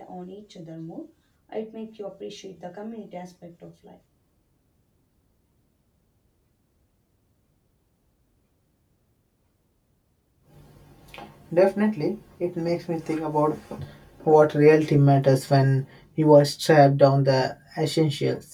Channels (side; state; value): both; identical; correlation 1.00